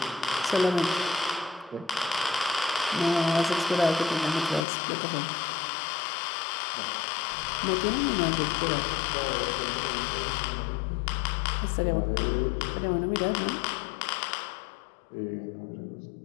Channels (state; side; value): drops out; right; at 4.7 s